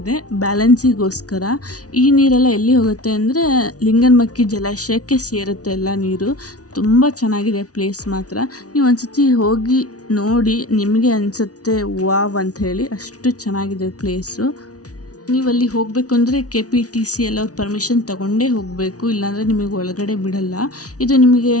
ಬ್ಯಾಲೆನ್ಸಿಗೋಸ್ಕರ. ಈ ನೀರೆಲ್ಲ ಎಲ್ಲಿ ಹೋಗುತ್ತೆ ಅಂದರೆ ಲಿಂಗನಮಕ್ಕಿ ಜಲಾಶಯಕ್ಕೆ ಸೇರುತ್ತೆ ಎಲ್ಲ ನೀರು. ತುಂಬ ಚೆನ್ನಾಗಿದೆ ಪ್ಲೇಸ್ ಮಾತ್ರ. ನೀವು ಒಂದ್ಸತಿ ಹೋಗಿ ನೋಡಿ, ನಿಮಗೆ ಅನಿಸುತ್ತೆ ವಾವ್ ಅಂತ ಹೇಳಿ. ಅಷ್ಟು ಚೆನ್ನಾಗಿದೆ ಪ್ಲೇಸು. ನೀವು ಅಲ್ಲಿ ಹೋಗಬೇಕು ಅಂದರೆ KPTC ಎಲ್ಲ ಅವ್ರ ಪರ್ಮಿಷನ್ ತೊಗೊಂಡೇ ಹೋಗಬೇಕು, ಇಲ್ಲಾಂದರೆ ನಿಮಗೆ ಒಳಗಡೆ ಬಿಡಲ್ಲ. ಇದು ನಿಮಗೆ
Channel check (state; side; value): late; right; 0.68 ms